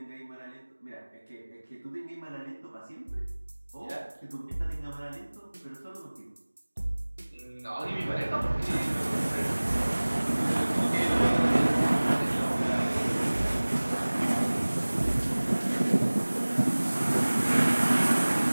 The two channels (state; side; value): inverted; both; correlation -1.00